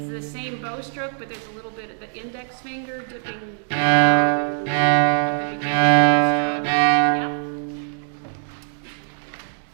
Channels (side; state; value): left; silent; 64 dB below the other